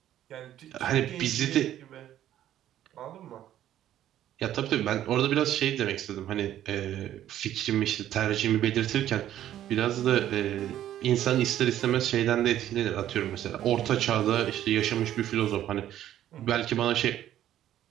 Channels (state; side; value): quieter; left; 12.0 dB